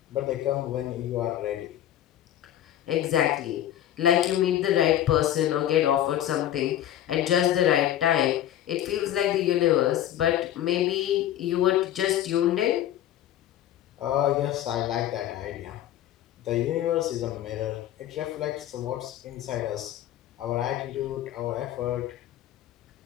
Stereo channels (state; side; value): quieter; right; 12.0 dB